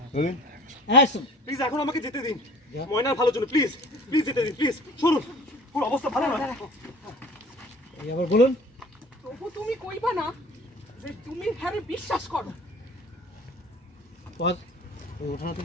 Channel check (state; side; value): normal; both; correlation 0.46